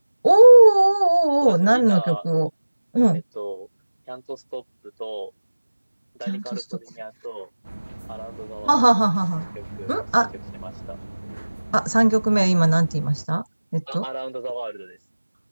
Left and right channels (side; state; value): both; inverted; correlation -1.00